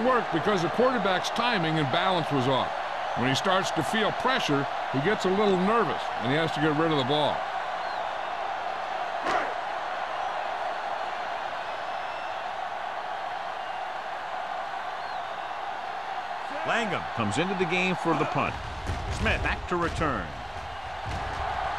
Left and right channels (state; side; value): identical; both; correlation 1.00